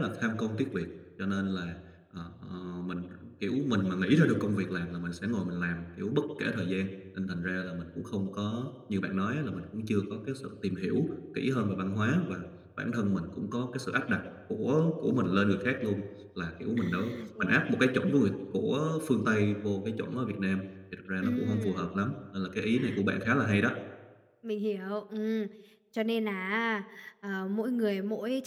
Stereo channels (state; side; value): identical; both; correlation 1.00